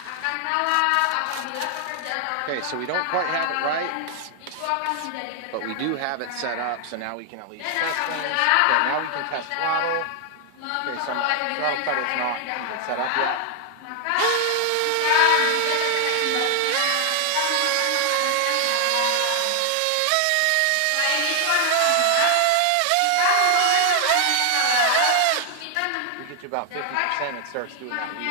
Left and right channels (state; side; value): different; both; correlation 0.00